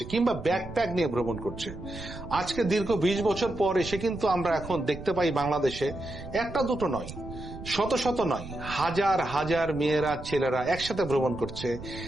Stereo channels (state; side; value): noise; right; rumble, 12 dB below the sound